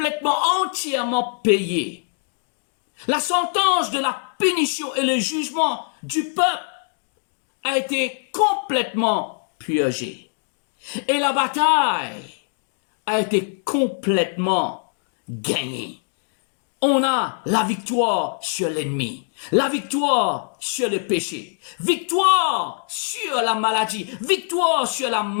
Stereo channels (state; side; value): silent; right; 63 dB below the other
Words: entièrement payé. La sentence de la punition et le jugement du peuple a été complètement purgé. Et la bataille a été complètement gagnée. On a la victoire sur l'ennemi, la victoire sur le péché, victoire sur la maladie, victoire sur la